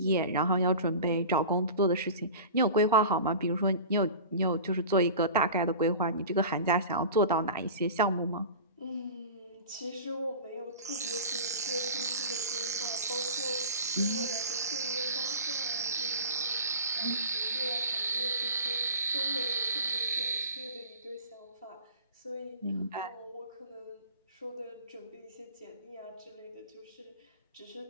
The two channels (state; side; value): inverted; both; correlation -0.36